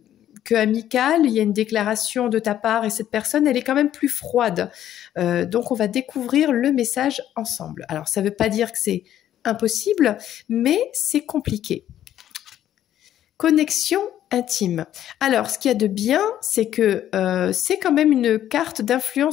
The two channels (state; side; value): quieter; right; 11.5 dB